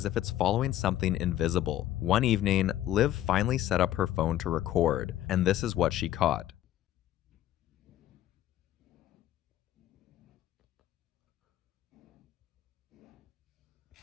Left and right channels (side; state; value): right; quieter; 13.0 dB